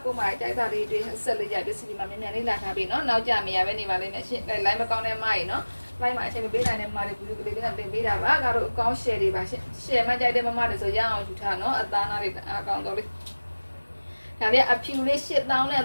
ကိုမတိုက်တာတွေတွေဆက်လက်ရပစ္စည်းတွေမှာမြန်မြန်လေးလာထားပြီနော်နောက်ကြမရပဲနေပါလိမ့်မယ်ရှင်လိုင်းမကောင်းတဲ့မိုင်းနော်လိုက်မှာအချိန်မပေးနိုင်တဲ့မားတွေဘူးကလေးတွေနဲ့တင်ပေးတာပါကတော့အကောင့် share တွေပါရှင် share မှကြိုက်တဲ့မမတွေဆိုရအောင်ယူထားနော်အသားနာတွေအကောင့်တော့လေးဒါလေးအဖြူလေး8000နဲ့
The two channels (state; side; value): inverted; both; correlation -1.00